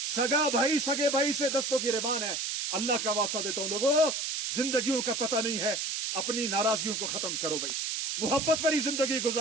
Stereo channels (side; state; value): right; noise; hiss, 2 dB below the sound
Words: सगा भाई सगे भाई से दस्तों की रिबान है। अल्लाह का वास्ता देता हूं लोगों, जिंदगियों का पता नहीं है, अपनी नाराजगियों को खत्म करो भाई, मोहब्बत पर ही जिंदगी